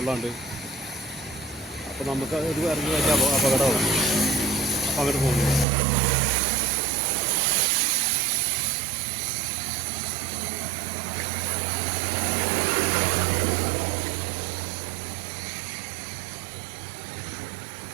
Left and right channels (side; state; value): left; drops out; at 5.7 s